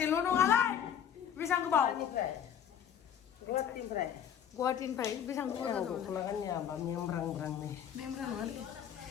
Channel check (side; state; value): right; quieter; 9.1 dB